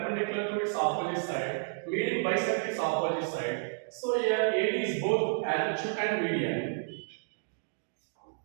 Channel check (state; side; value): silent; left; digital silence